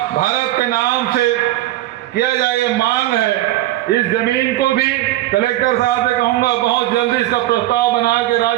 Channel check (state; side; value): quieter; left; 15.6 dB